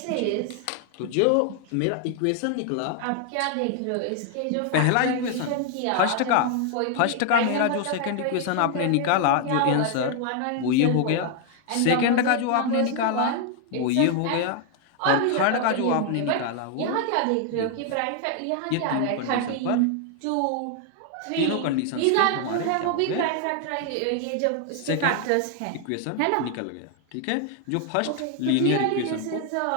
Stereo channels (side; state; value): both; different; correlation 0.00